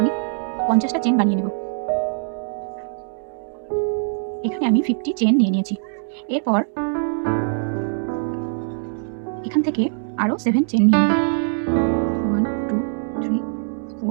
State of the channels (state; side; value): silent; left; digital silence